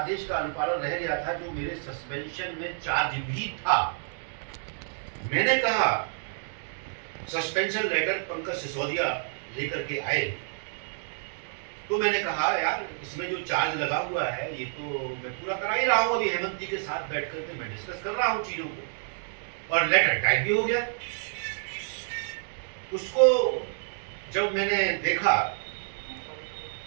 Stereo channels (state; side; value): silent; left; digital silence